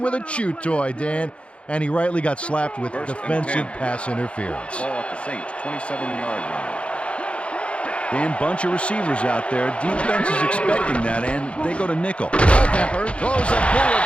with a chew toy, Dan. And he rightly got slapped with defensive pass interference. Ball at the Saints, 27-yard line. Dan, bunch of receivers out there. Defense is expecting that, and they go to nickel. Culpepper throws a bullet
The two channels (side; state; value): right; late; 0.060 ms